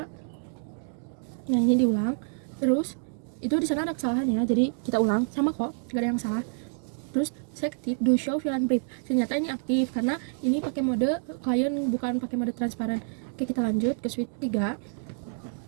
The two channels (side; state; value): left; silent; 58 dB below the other